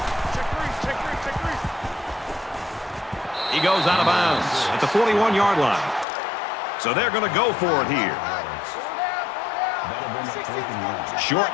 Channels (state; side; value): drops out; right; at 6.1 s